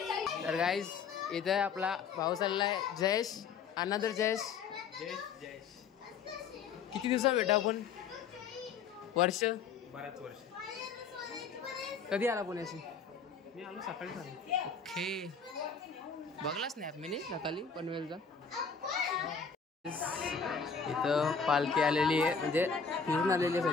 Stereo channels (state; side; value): quieter; right; 5.9 dB